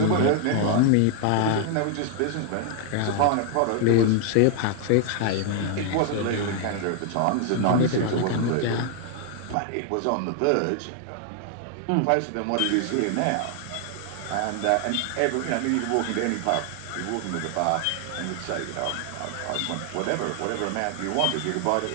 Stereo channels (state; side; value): different; both; correlation 0.00